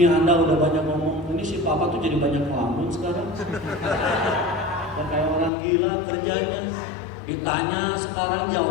Anda udah banyak ngomong, ini si papa tuh jadi banyak ngelamun sekarang. Dan kayak orang gila kerjanya. Ditanya sekarang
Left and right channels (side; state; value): right; drops out; at 5.5 s